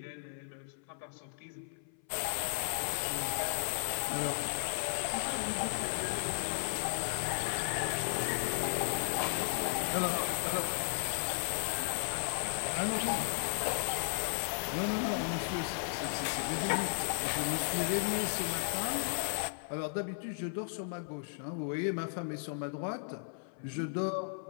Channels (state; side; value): silent; right; 54 dB below the other